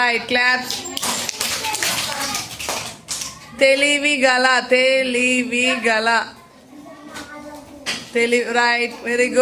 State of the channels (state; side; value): identical; both; correlation 1.00